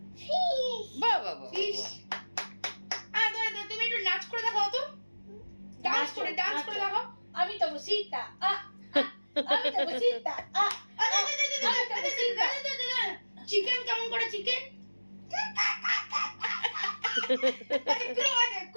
বাহ বাহ বাহ ফিশ তুমি একটু নাচ করে দেখাও তো ডান্স করে দেখাও আমি তো বসিতা আমি তো বসিতা চিকেন কেমন করে চিকেন?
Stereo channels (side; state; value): both; inverted; correlation -1.00